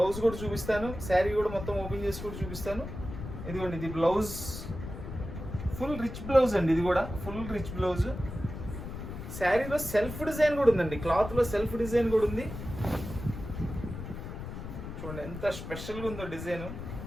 కూడా చూపిస్తాను, శారీ కూడా మొత్తం ఓపెన్ చేసి కూడా చూపిస్తాను. ఇదిగోండి ఇది బ్లౌజ్, ఫుల్ రిచ్ బ్లౌజ్ అండి. ఇది కూడా ఫుల్ రిచ్ బ్లౌజ్. శారీలో సెల్ఫ్ డిజైన్ కూడా ఉందండి, క్లాత్లో సెల్ఫ్ డిజైన్ కూడా ఉంది. చూడండి ఎంత స్పెషల్గా ఉందో డిజైన్.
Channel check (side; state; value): left; noise; rumble, 9 dB below the sound